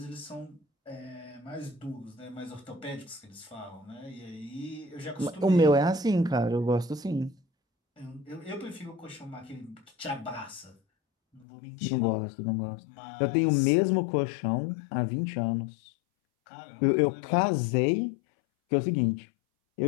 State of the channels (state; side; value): drops out; right; at 11.5 s